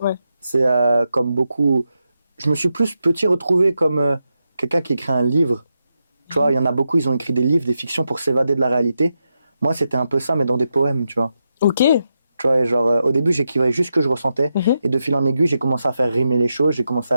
C'est comme beaucoup... Je me suis plus petit retrouvé comme quelqu'un qui écrit un livre Tu vois, il y en a beaucoup, ils ont écrit des livres, des fictions pour s'évader de la réalité. Moi, c'était un peu ça, mais dans des poèmes, tu vois. Ok. Tu vois, et genre, au début, j'écrivais juste ce que je ressentais. Mhm. Et de fil en aiguille, j'ai commencé à faire rimer les choses, j'ai commencé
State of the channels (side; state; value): both; inverted; correlation -0.86